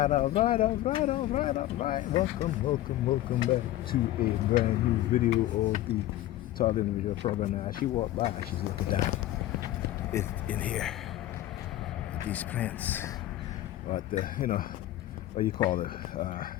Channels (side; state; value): right; quieter; 14.5 dB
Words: all right, all right, all right, all right. Welcome back to a brand new video of the Target Individual Program. Now, she walked by, she's looking down in here at these plants, or at the, what do you call it?